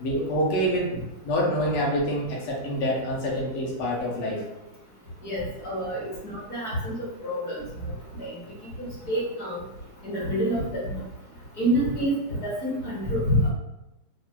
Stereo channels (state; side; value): late; right; 4.7 ms